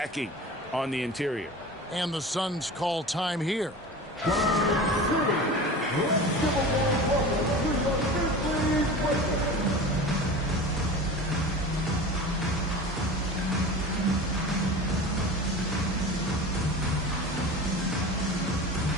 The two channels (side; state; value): both; normal; correlation 0.34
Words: on the interior. And the Suns call time here.